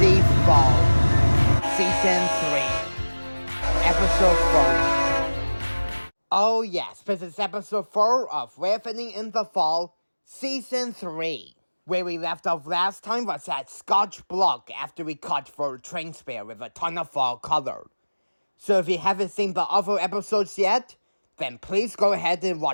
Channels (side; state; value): both; inverted; correlation -1.00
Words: Fall, Season 3, Episode 4. Oh yes, this is Episode 4 of Railfanning in the Fall, Season 3. Where we left off last time was at Scotch Block after we caught for a train spare with a ton of fall color. So if you haven't seen the other episodes yet, then please go ahead and